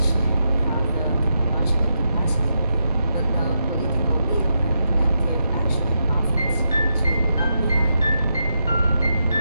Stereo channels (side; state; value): both; inverted; correlation -0.84